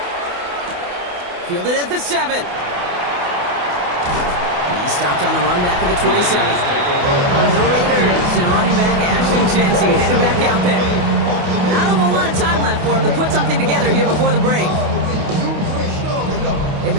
Fielded at the 7. He stopped on the run back at the 27. The Raiders and running back Ashton Jensen headed back out there. Not a whole lot of time left for him to put something together here before the break. They've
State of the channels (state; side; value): late; left; 28 ms